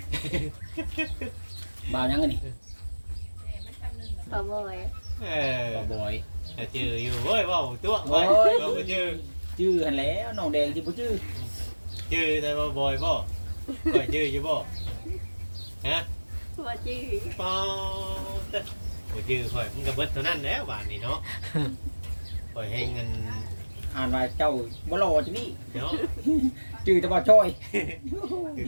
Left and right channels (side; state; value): both; inverted; correlation -1.00